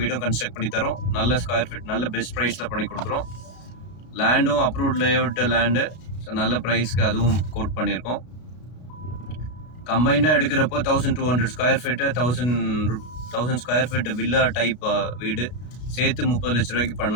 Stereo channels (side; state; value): right; late; 33 ms